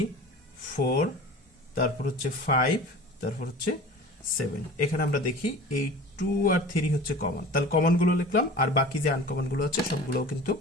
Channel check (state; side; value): normal; both; correlation 0.39